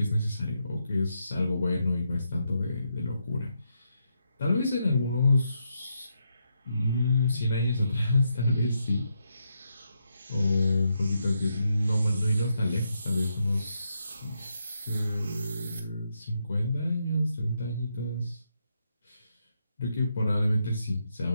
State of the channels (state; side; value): inverted; both; correlation -0.81